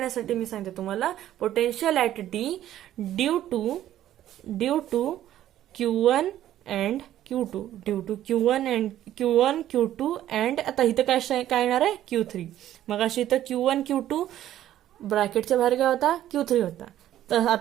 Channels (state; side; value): quieter; left; 12.4 dB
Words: मी सांगते तुम्हाला, potential at D due to Q1 and Q2, due to Q1 Q2 and, आता इथं काय येणार आहे, Q3. मग अशी इथं Q1 Q2 ब्रॅकेटच्या बाहेर काय होता, Q3 होता. तर